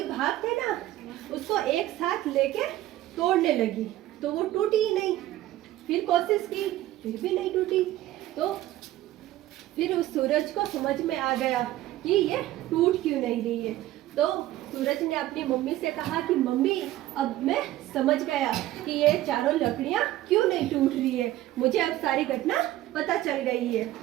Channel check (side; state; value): left; quieter; 15.0 dB